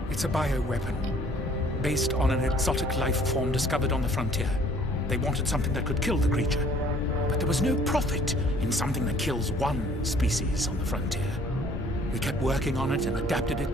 It's a bioweapon, based on an exotic life form discovered on the frontier. They wanted something that could kill the creature. But there was no profit in something that kills one species on the frontier. We kept working on it and adapted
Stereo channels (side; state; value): both; normal; correlation 0.56